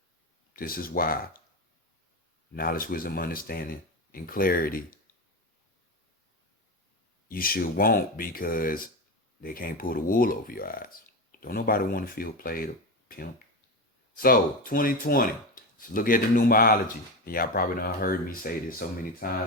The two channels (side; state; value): both; normal; correlation 0.19